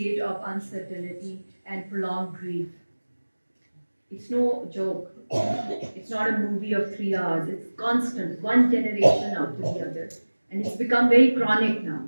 of uncertainty and prolonged grief, it's no joke. It's not a movie of 3 hours. It's constant, one generation after the other. And it's become very chronic now.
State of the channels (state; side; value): inverted; both; correlation -1.00